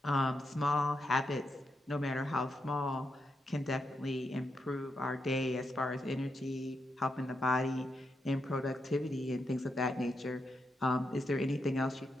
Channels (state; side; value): normal; both; correlation 0.83